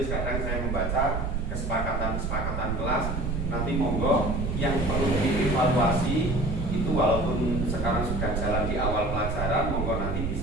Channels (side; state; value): right; noise; rumble, 2 dB below the sound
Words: Kadang saya membaca kesepakatan kelas. Nanti monggo yang perlu dievaluasi itu, walaupun sekarang sudah jalan di awal pelajaran, monggo nanti